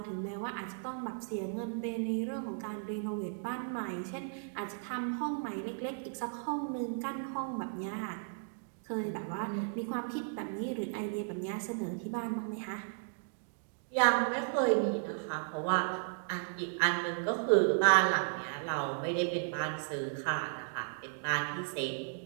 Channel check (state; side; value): silent; left; digital silence